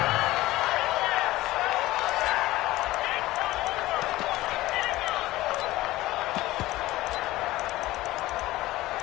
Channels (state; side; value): quieter; right; 17.5 dB